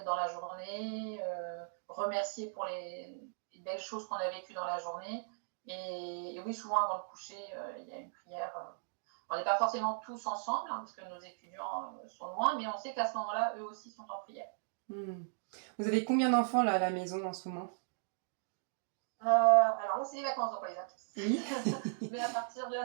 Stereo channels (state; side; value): silent; left; digital silence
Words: dans la journée, remercier pour les belles choses qu'on a vécues dans la journée. Et oui, souvent avant le coucher, il y a une prière. On n'est pas forcément tous ensemble, hein, parce que nos étudiants sont loin, mais on sait qu'à ce moment-là, eux aussi sont en prière. Vous avez combien d'enfants là à la maison en ce moment? Alors là, c'est les vacances, donc on les a tous. Oui. Mais à partir de la